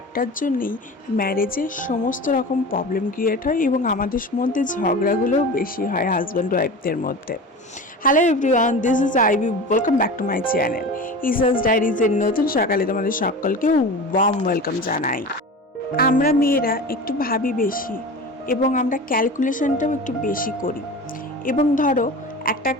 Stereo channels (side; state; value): both; normal; correlation 0.32